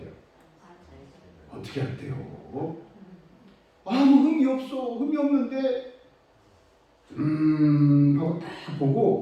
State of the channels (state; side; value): identical; both; correlation 1.00